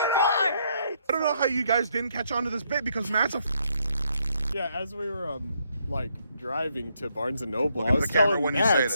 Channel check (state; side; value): inverted; both; correlation -0.74